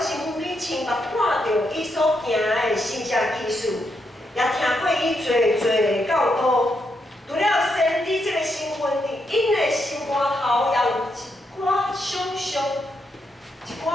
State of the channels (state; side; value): normal; both; correlation 0.81